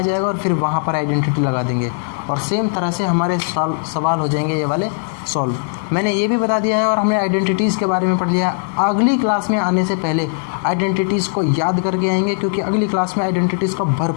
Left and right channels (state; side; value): silent; right; 67 dB below the other